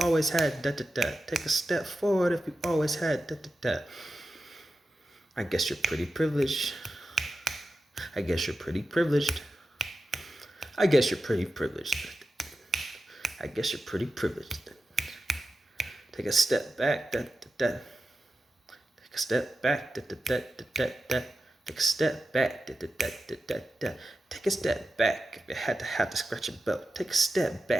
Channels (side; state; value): both; normal; correlation 0.92